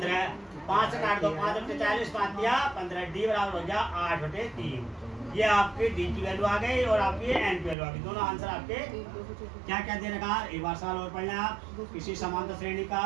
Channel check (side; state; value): left; drops out; at 7.8 s